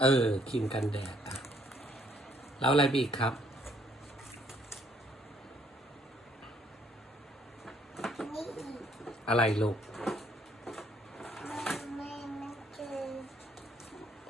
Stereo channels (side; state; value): both; normal; correlation 0.66